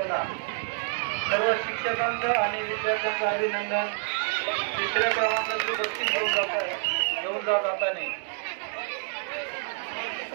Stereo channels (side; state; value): left; silent; 57 dB below the other